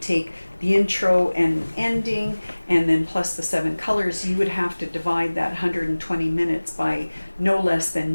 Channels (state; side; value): inverted; both; correlation -1.00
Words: the intro and ending and then plus the 7 colors, you would have to divide that 120 minutes by no less